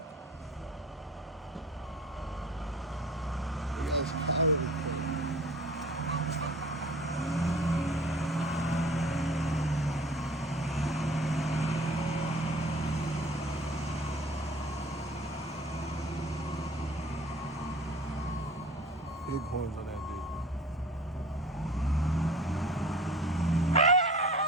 Big ass cow. Big horns on that bitch.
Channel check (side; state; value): both; normal; correlation 0.44